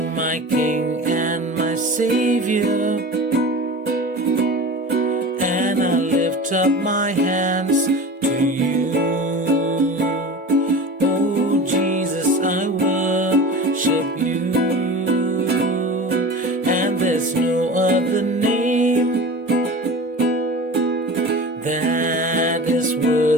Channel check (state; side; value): normal; both; correlation 0.33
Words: my King and my Savior. And I'll lift up my hands to you. Oh Jesus, I worship you. And there's no other name that is